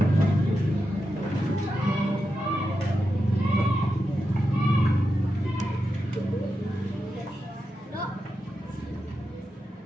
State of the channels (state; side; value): normal; both; correlation 0.88